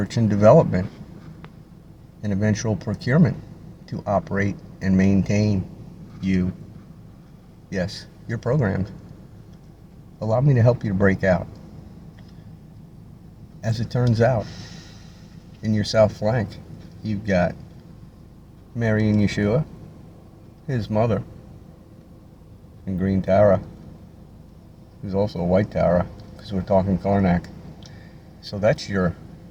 and development and eventual procurement to operate and maintain you. Yes, you're programmed. Allow me to help you to break out. As it turns out, in your south flank, you've got Mary and Yeshua, his mother, and Green Tara, who's also a white Tara. Because we're talking Karnak. So that's your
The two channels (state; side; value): identical; both; correlation 1.00